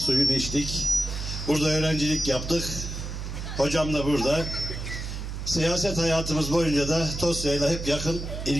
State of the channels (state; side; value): noise; right; hum, 6 dB below the sound